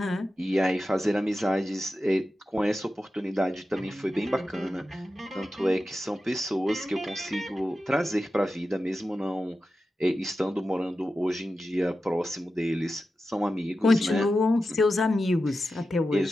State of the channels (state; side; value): normal; both; correlation 0.92